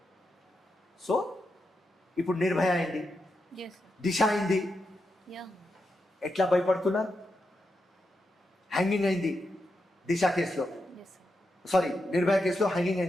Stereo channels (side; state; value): both; normal; correlation 0.86